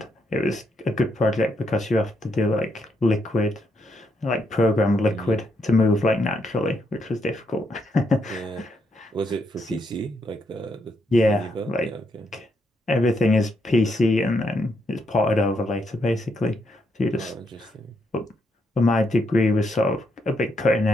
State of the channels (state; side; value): normal; both; correlation 0.78